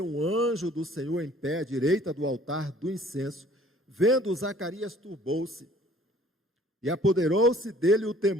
um anjo do Senhor em pé à direita do altar do incenso. Vendo Zacarias, turbou-se, e apoderou-se dele o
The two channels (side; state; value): both; normal; correlation 0.54